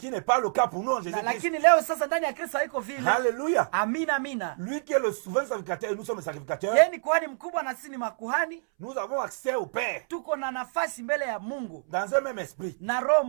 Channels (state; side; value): silent; left; 60 dB below the other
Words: n'est pas le cas pour nous en Jésus-Christ. Lakini leo sasa ndani ya Kristo haiko vile. Alléluia. Amina, amina. Lui qui est le souverain sacrificateur, nous sommes les sacrificateurs. Yeye ni kuhani mkubwa na sisi ni makuhani. Nous avons accès au Père Tuko na nafasi mbele ya Mungu dans un même esprit. na roho